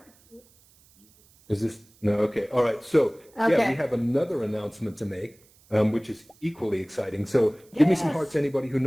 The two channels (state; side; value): noise; right; hiss, 30 dB below the sound